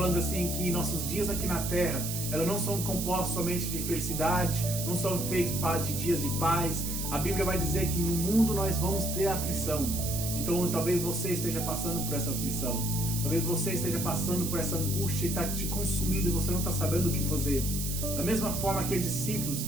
assim que nossos dias aqui na terra, elas não são compostos somente de felicidade, não são feitos de dias de paz. A Bíblia vai dizer que no mundo nós vamos ter aflição. Então talvez você esteja passando por essa aflição. Talvez você esteja passando por essa angústia e está te consumindo e você não está sabendo o que fazer. Da mesma forma que os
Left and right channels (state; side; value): noise; right; hiss, 4 dB below the sound